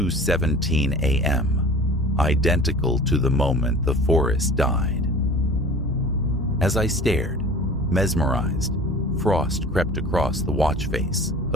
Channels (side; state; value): both; normal; correlation 0.42